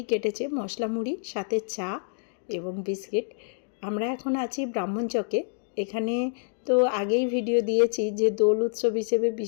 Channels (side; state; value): right; silent; digital silence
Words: কেটেছে, মশলা মুড়ি সাথে চা এবং বিস্কিট। আমরা এখন আছি ব্রাহ্মণচকে। এখানে তো আগেই ভিডিও দিয়েছি যে দোল উৎসব হিসেবে